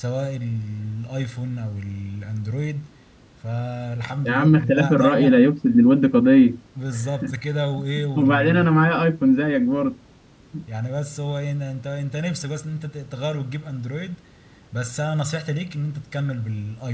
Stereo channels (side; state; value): both; identical; correlation 1.00